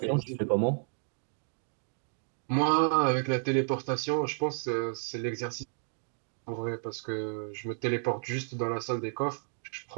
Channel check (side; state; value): left; silent; 56 dB below the other